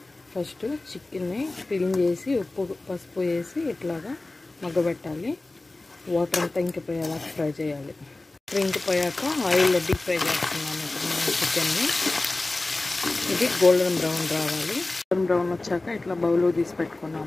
ఫస్ట్ చికెన్ని క్లీన్ చేసి ఉప్పు పసుపు వేసి ఇట్లాగా మగ్గబెట్టాలి. వాటర్ అంతా ఇంకిపోయేలాగా ఫ్రై చేయాలి. ఇంకిపోయాక ఆయిల్లో డీప్ ఫ్రై చేస్తున్నాను ఇప్పుడు చికెన్ని. ఇది గోల్డెన్ బ్రౌన్ రావాలి. గోల్డెన్ బ్రౌన్ వచ్చాక ఇట్లా బౌల్లో తీసి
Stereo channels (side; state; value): right; quieter; 3.0 dB